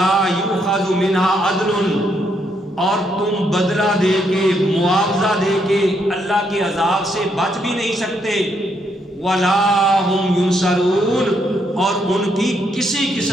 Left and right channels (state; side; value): normal; both; correlation 0.75